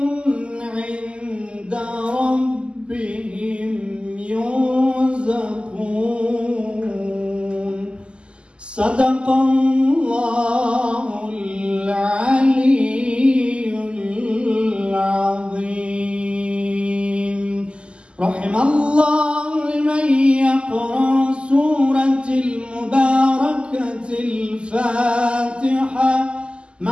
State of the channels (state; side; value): late; left; 0.051 ms